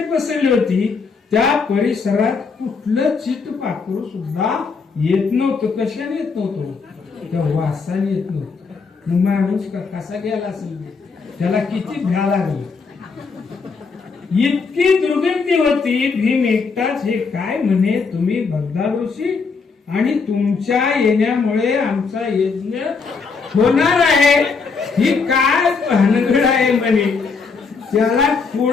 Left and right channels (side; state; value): right; quieter; 4.9 dB